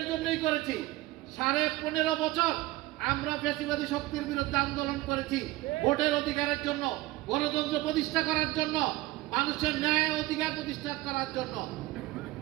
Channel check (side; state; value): left; quieter; 18.5 dB